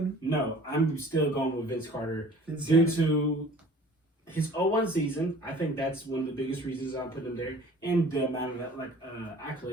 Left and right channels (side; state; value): both; normal; correlation 0.49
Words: No, I'm still going with Vince Carter due to his 0-1 season. I think that's one of the biggest reasons I'm putting him there, and the amount of